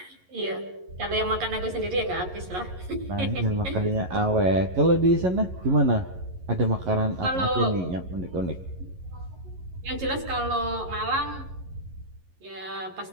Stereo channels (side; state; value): left; late; 11 ms